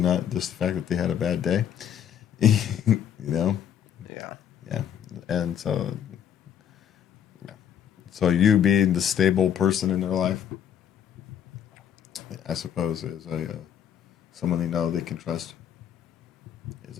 just the fact that they had a bad day. Yeah. Yeah. And so you being the stable person in their life, I suppose, is someone they know they can trust. Is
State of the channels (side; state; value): right; quieter; 9.1 dB